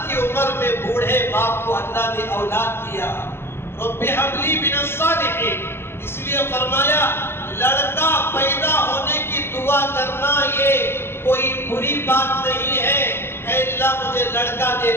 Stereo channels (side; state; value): right; late; 0.11 ms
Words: کی عمر میں بوڑھے باپ کو اللہ نے اولاد دیا۔ رب ہب لی من الصالحین، اس لیے فرمایا لڑکا پیدا ہونے کی دعا کرنا یہ کوئی بری بات نہیں ہے۔ اے اللہ مجھے لڑکا دے